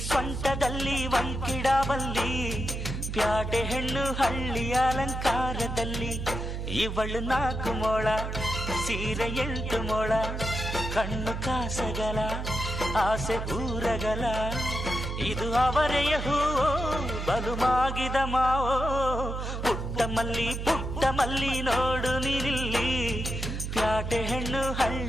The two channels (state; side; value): noise; right; hum, 4 dB below the sound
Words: ಸೊಂಟದಲ್ಲಿ ವಂಕಿಡಬಲ್ಲಿ, ಪ್ಯಾಟೆ ಹೆಣ್ಣು ಹಳ್ಳಿ ಅಲಂಕಾರದಲ್ಲಿ. ಇವಳು 4 ಮೊಳ ಸೀರೆ 8 ಮೊಳ, ಕಣ್ಣು ಕಾಸಗಲ ಆಸೆ ಊರಗಲ, ಇದು ಅವರೆಯ ಹೂವೋ ಬಲು ಮಾಗಿದ ಮಾವೋ. ಪುಟ್ಟ ಮಲ್ಲಿ ನೋಡು ನೀನಿಲ್ಲಿ, ಪ್ಯಾಟೆ ಹೆಣ್ಣು